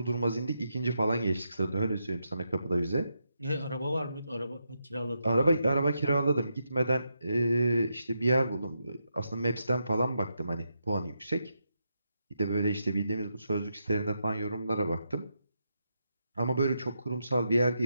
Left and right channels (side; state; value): both; inverted; correlation -0.84